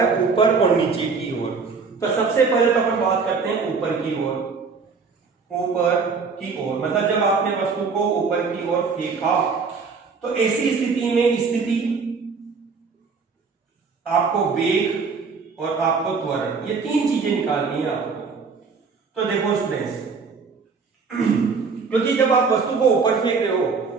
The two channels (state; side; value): quieter; left; 5.0 dB